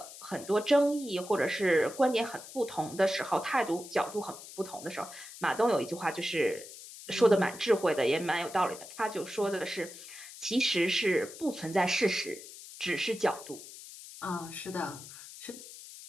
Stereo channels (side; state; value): left; noise; hiss, 15 dB below the sound